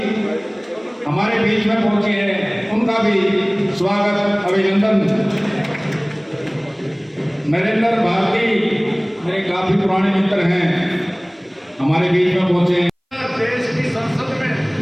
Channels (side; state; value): both; identical; correlation 1.00